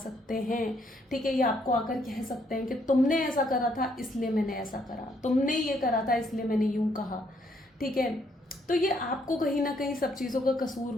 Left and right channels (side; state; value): both; normal; correlation 0.71